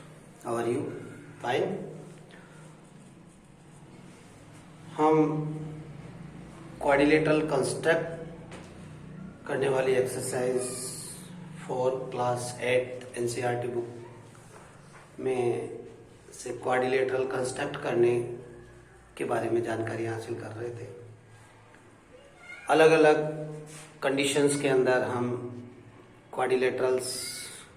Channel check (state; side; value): identical; both; correlation 1.00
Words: how are you? Fine. हम quadrilateral construct करने वाली एक्सरसाइज 4 क्लास 8 एनसीईआरटी बुक में से क्वाड्रिलेटरल कंस्ट्रक्ट करने के बारे में जानकारी हासिल कर रहे थे। अलग अलग कंडीशंस के अंदर हम क्वाड्रिलेटरल्स